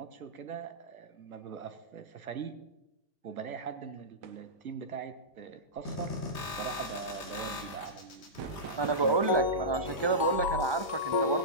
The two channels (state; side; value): late; left; 1.2 ms